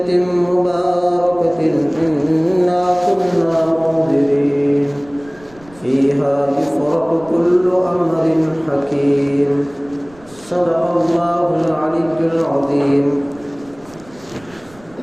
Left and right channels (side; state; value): right; noise; rumble, 25 dB below the sound